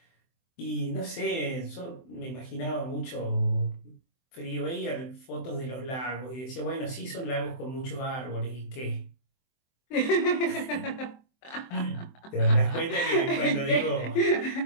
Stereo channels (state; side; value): late; right; 23 ms